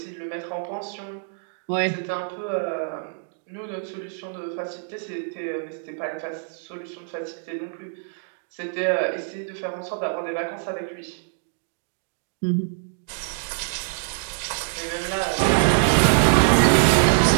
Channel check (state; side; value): silent; left; digital silence